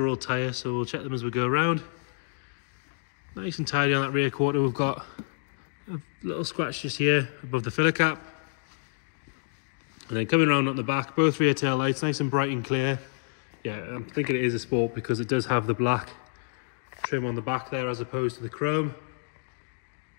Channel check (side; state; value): right; silent; digital silence